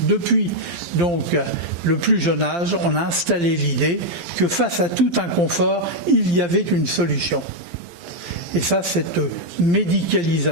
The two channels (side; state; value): left; late; 11 ms